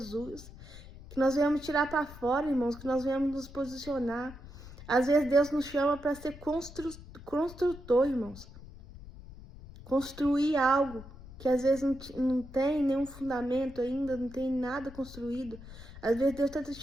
Que nós venhamos tirar para fora, irmãos, que nós venhamos nos posicionar. Às vezes Deus nos chama para ser construtor, irmãos. Construir algo que às vezes não tem nenhum fundamento ainda, não tem nada construído. Às vezes Deus está te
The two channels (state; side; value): noise; left; rumble, 16 dB below the sound